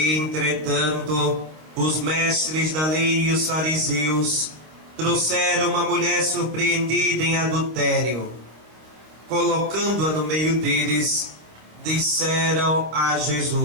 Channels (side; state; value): left; late; 26 ms